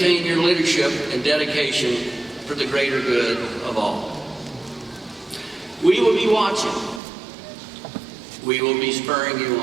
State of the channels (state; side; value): drops out; left; at 7.0 s